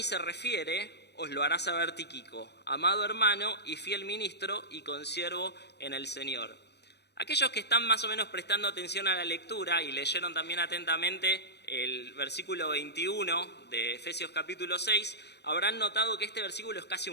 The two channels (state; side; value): late; right; 0.49 ms